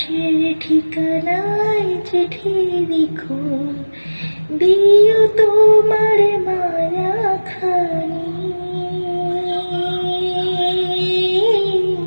ঠিকানায় চিঠি লিখো। দিও তোমার মারা খানি,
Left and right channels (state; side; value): inverted; both; correlation -1.00